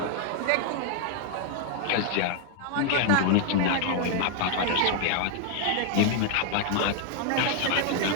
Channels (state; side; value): different; both; correlation 0.00